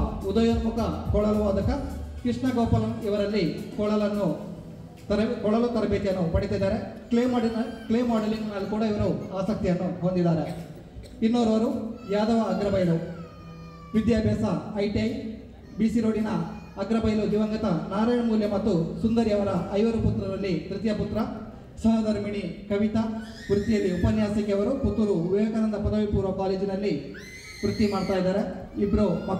ಉದಯೋನ್ಮುಖ ಕೊಳಲು ವಾದಕ. ಕೃಷ್ಣ ಗೋಪಾಲನ್ ಇವರಲ್ಲಿ ಕೊಳಲು ತರಬೇತಿಯನ್ನು ಪಡೆದಿದ್ದಾರೆ. ಕ್ಲೇ ಮಾಡೆಲಿಂಗ್ನಲ್ಲಿ ಕೂಡ ಇವರು ಆಸಕ್ತಿಯನ್ನು ಹೊಂದಿದ್ದಾರೆ. ಇನ್ನೋರ್ವರು ಯಾದವ ಅಗ್ರಬೈಲು, ವಿದ್ಯಾಭ್ಯಾಸ ITI, BC ರೋಡಿನ ಅಗ್ರಬೈಲು ದಿವಂಗತ ನಾರಾಯಣ ಮೂಲ್ಯ ಮತ್ತು ಸುಂದರಿ ಅವರ 5 ಪುತ್ರರಲ್ಲಿ ತೃತೀಯ ಪುತ್ರ. ಸಹಧರ್ಮಿಣಿ ಕವಿತಾ, ವೃತ್ತಿಯಲ್ಲಿ ಉಪನ್ಯಾಸಕಿ. ಅವರು ಪುತ್ತೂರು ವಿವೇಕಾನಂದ ಪದವಿ ಪೂರ್ವ ಕಾಲೇಜಿನಲ್ಲಿ ವೃತ್ತಿ ಮಾಡ್ತಾ ಇದ್ದಾರೆ. ಇಬ್ಬರು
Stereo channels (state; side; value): identical; both; correlation 1.00